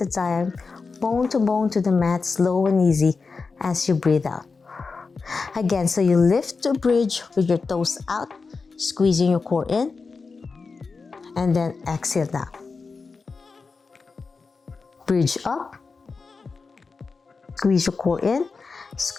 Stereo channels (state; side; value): quieter; right; 4.5 dB